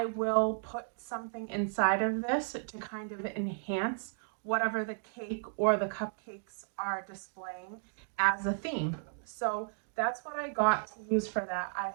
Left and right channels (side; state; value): left; silent; digital silence